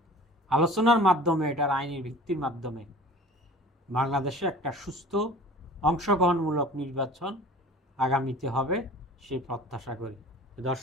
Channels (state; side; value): normal; both; correlation 0.43